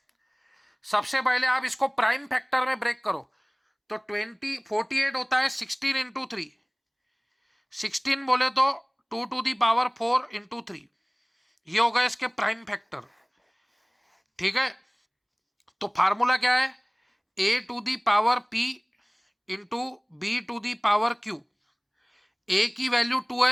सबसे पहले आप इसको प्राइम फैक्टर में ब्रेक करो, तो 48 होता है 16 × 3, 16 बोले तो 2⁴ 4 × 3, ये होगा इसके प्राइम फैक्टर। ठीक है, तो फार्मूला क्या है? a⁴p into b⁴q। a की वैल्यू 2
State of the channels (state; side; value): identical; both; correlation 1.00